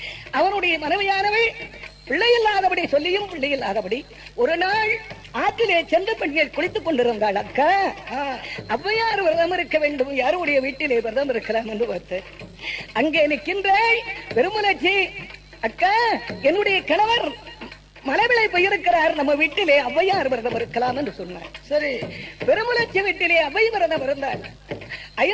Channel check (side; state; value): both; identical; correlation 1.00